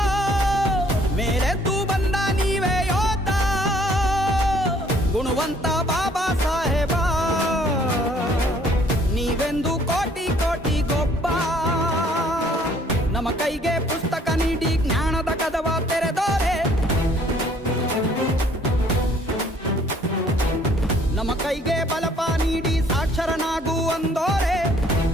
ಮೇಲೆದ್ದು ಬಂದ ನೀವೇ ಯೋಧ, ಗುಣವಂತ ಬಾಬಾ ಸಾಹೇಬ ನೀವೆಂದು ಕೋಟಿ ಕೋಟಿ ಗೊಬ್ಬ. ನಮ್ಮ ಕೈಗೆ ಪುಸ್ತಕ ನೀಡಿ ಜ್ಞಾನದ ಕದವ ತೆರೆದೋರೆ, ನಮ್ಮ ಕೈಗೆ ಬಲಪ ನೀಡಿ ಸಾಕ್ಷರನಾಗು ಅಂದೋರೆ.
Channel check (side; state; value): both; normal; correlation 0.60